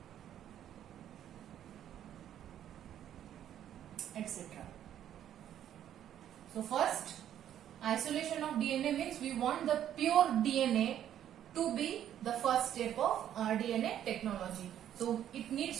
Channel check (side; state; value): left; quieter; 10.7 dB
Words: etc. So first, isolation of DNA means we want the pure DNA to be the first step of rDNA technology. So it